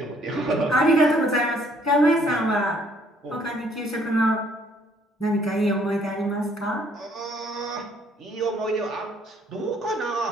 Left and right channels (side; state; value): both; normal; correlation 0.63